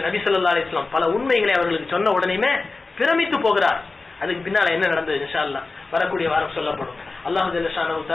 நபி ஸல்லல்லாஹு அலைஹி வஸல்லம் பல உண்மைகளை அவர்களுக்கு சொன்ன உடனேயுமே பிரமித்து போகிறார். அதுக்கு பின்னால என்ன நடந்தது இன்ஷா அல்லாஹ் வரக்கூடிய வாரம் சொல்லப்படும். அல்லாஹ் ஜல்ல ஷானஹு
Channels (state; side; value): quieter; right; 3.7 dB